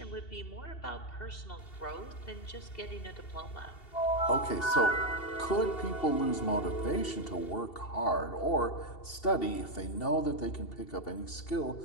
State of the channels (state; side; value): late; right; 2.7 ms